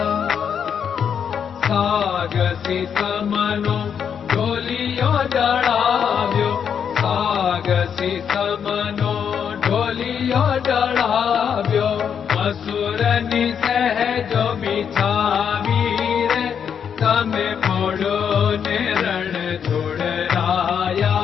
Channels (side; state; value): right; quieter; 7.6 dB